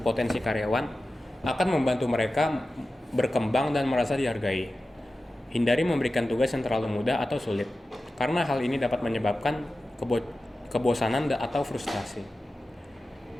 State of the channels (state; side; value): normal; both; correlation 0.94